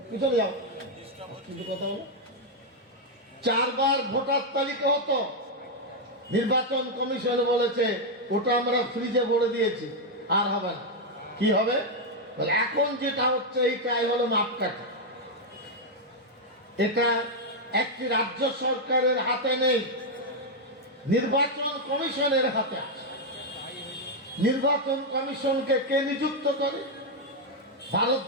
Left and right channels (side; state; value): both; normal; correlation 0.00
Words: পিছনে যাও, কিন্তু কথা বলো। 4 বার ভোটার তালিকা হতো, নির্বাচন কমিশন বলেছে ওটা আমরা ফ্রিজে ভরে দিয়েছি, আর হবে না। কি হবে? এখন যেটা হচ্ছে এইটাই হলো মাপকাঠি। এটা একটি রাজ্য সরকারের হাতে নেই, নির্বাচন কমিশনের হাতে আছে। নির্বাচন কমিশনকে কে নিযুক্ত করে?